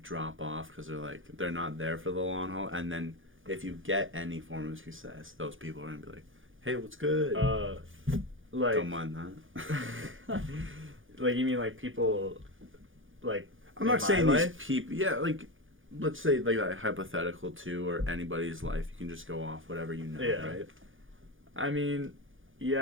drop off because they're not there for the long haul, and then if you get any form of success, those people are gonna be like, hey, what's good? Like, don't mind that. Like, you mean like people like I'm not saying these people, yeah, like let's say like hypothetical too, or anybody's life, you can just go off whatever you know, right? I mean,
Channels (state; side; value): late; left; 0.58 ms